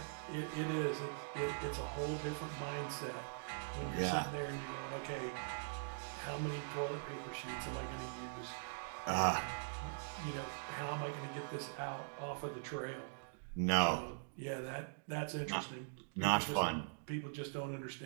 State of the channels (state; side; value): silent; left; digital silence